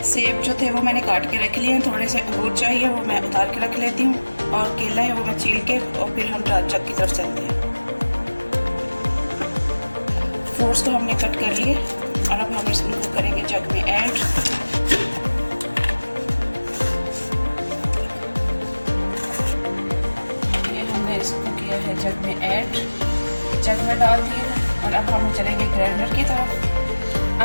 सेब जो थे वो मैंने काट के रख लिए हैं। थोड़े से अंगूर चाहिए, वो मैं उतार के रख लेती हूँ। और केला है वो मैं छील के और फिर हम जग की तरफ चलते हैं। फ्रूट्स तो हमने कट कर लिए और अब हम इसको करेंगे जग में ऐड। इसको किया है जग में ऐड, जग में डाल दिए हैं और अब हम चलेंगे ग्राइंडर की तरफ।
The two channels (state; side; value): inverted; both; correlation -1.00